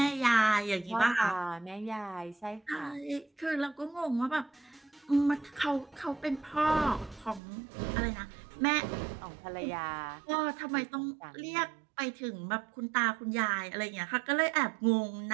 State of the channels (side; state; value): left; drops out; at 7.4 s